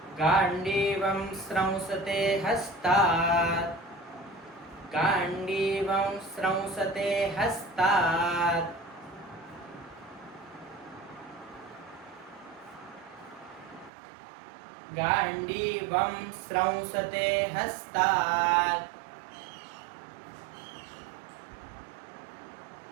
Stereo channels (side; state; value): left; drops out; at 13.9 s